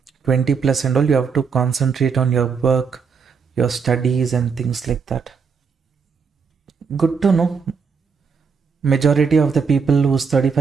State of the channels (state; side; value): quieter; left; 5.7 dB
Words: 20 plus and all, you have to concentrate on your work, your studies and things like that. Good to know. Majority of the people who's